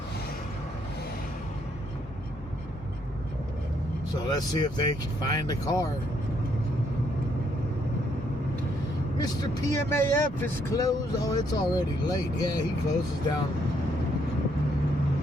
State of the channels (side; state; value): both; normal; correlation 0.72